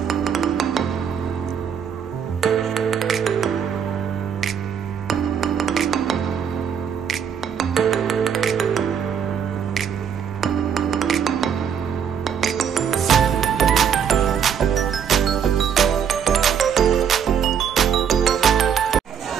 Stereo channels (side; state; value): left; quieter; 7.8 dB